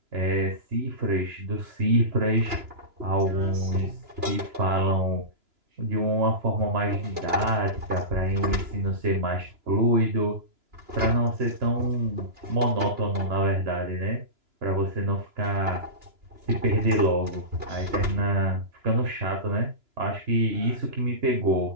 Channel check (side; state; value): left; late; 3.0 ms